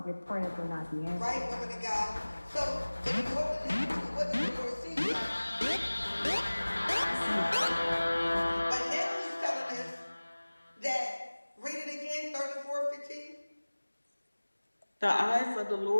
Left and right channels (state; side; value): inverted; both; correlation -1.00